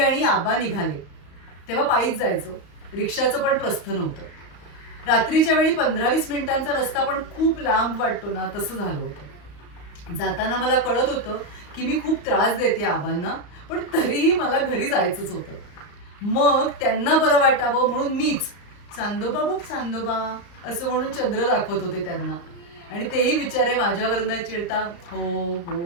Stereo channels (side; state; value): right; late; 34 ms